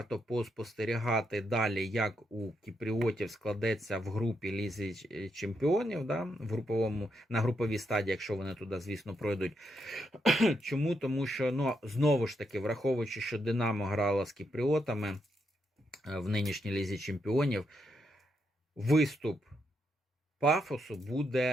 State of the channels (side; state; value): both; normal; correlation 0.80